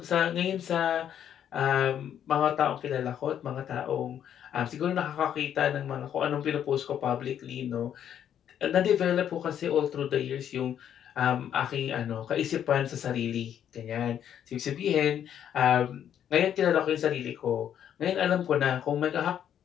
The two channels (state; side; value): quieter; right; 9.6 dB